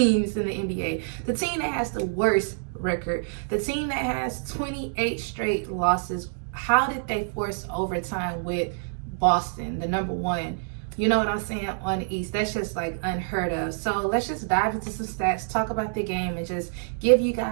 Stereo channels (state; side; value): silent; left; digital silence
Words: in the NBA, the team that has the worst record, the team that has 28 straight losses, how did they force overtime with Boston, the number one? You know what I'm saying, on the East? That's just like unheard of. So let's just dive into some stats, talk about the game, and just give you